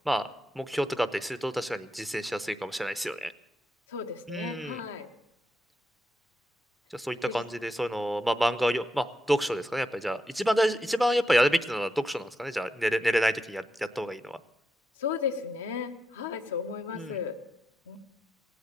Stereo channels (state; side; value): normal; both; correlation 0.85